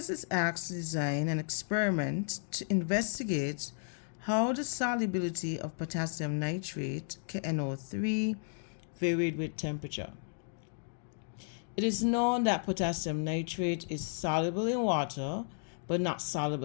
is asked to design an experiment to investigate how the solubility of potassium nitrate, KNO3, varied with temperature. It is known that potassium nitrate is soluble in water but not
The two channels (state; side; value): silent; right; digital silence